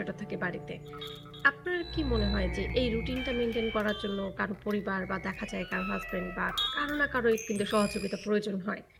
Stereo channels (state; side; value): identical; both; correlation 1.00